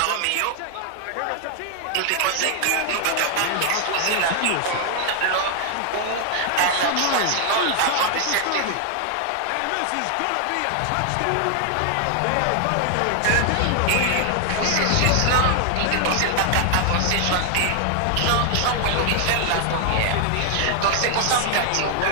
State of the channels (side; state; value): both; different; correlation 0.00